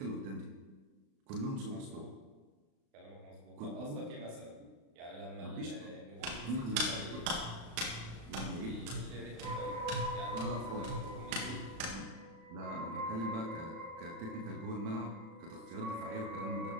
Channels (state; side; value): late; left; 36 ms